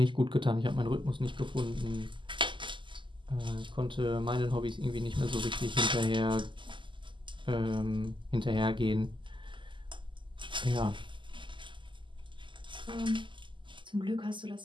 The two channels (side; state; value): left; late; 0.24 ms